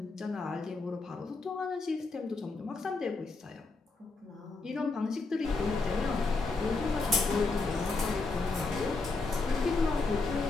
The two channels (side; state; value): right; quieter; 3.7 dB